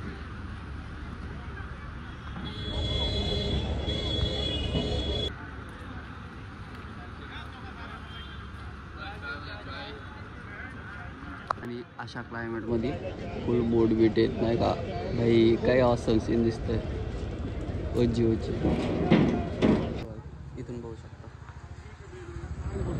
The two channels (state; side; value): identical; both; correlation 1.00